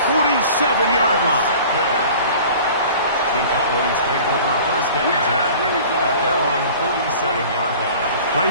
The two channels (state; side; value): inverted; both; correlation -0.44